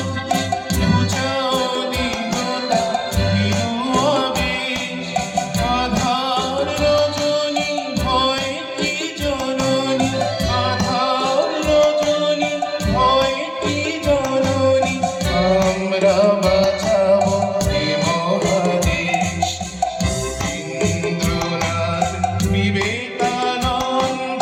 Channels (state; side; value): identical; both; correlation 1.00